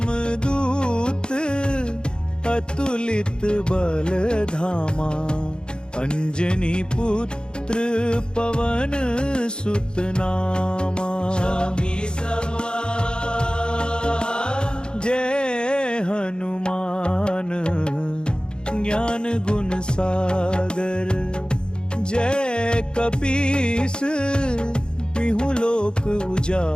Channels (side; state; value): right; late; 0.049 ms